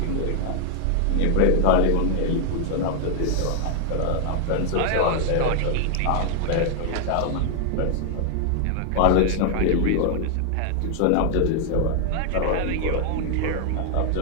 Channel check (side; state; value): both; different; correlation 0.00